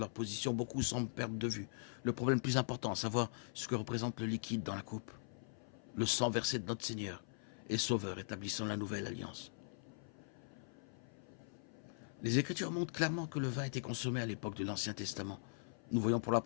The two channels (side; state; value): right; silent; 50 dB below the other